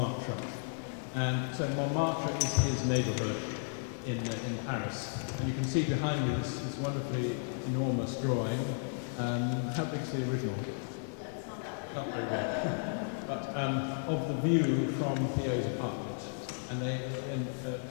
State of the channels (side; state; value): right; silent; digital silence